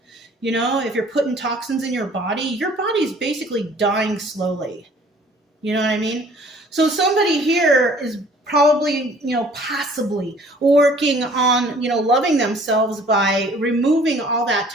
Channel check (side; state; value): both; normal; correlation 0.54